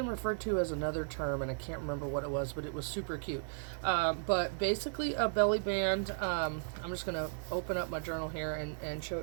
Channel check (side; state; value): left; silent; 54 dB below the other